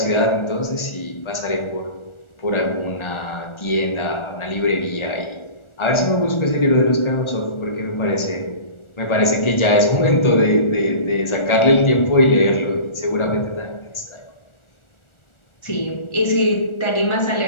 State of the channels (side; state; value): right; late; 1.4 ms